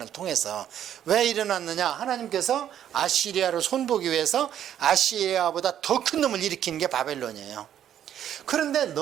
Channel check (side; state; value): left; quieter; 10.3 dB